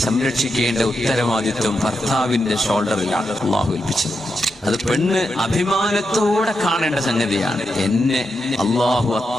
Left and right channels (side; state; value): both; normal; correlation 0.85